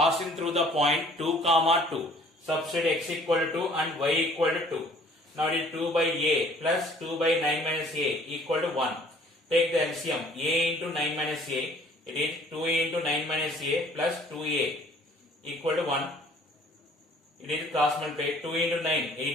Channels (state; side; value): normal; both; correlation 0.55